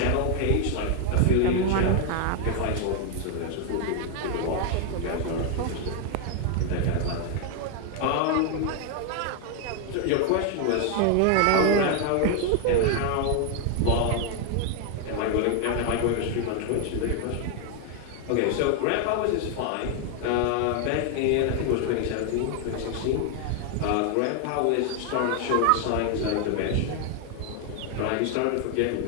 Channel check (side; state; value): both; different; correlation 0.00